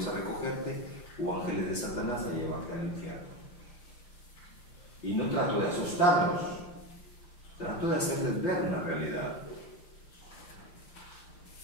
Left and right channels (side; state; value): right; late; 5.8 ms